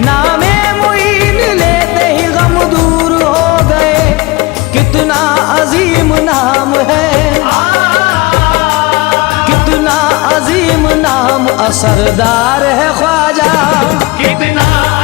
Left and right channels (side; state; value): right; quieter; 22.7 dB